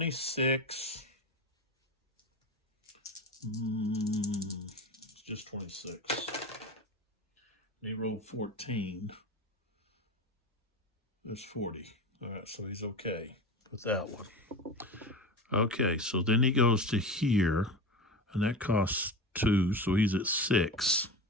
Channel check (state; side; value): normal; both; correlation 0.27